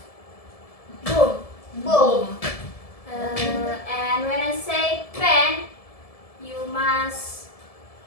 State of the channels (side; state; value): right; late; 1.7 ms